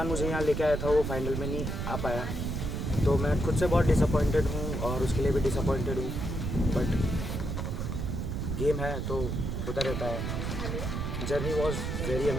मुझे यहाँ लेके आया था वो फाइनल में नहीं आ पाया, तो मैं खुद से बहुत डिसअपॉइंटेड हूँ और उसके लिए भी डिसअपॉइंटेड हूँ। बट गेम है तो होता रहता है। Journey was very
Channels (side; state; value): right; noise; rumble, 2 dB below the sound